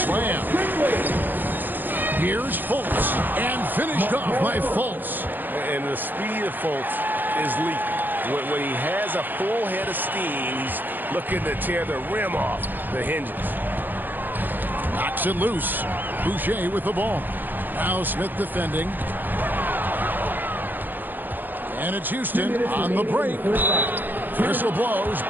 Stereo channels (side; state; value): left; late; 0.090 ms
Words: Here's Fultz. And finished off by Fultz. And the speed of Fultz is lethal. When he has a full head of steam, he's looking to tear the rim off the hinges. Knocks it loose. Boucher with the ball. Now Smith defending. And it's Houston on the break. Whistle blows.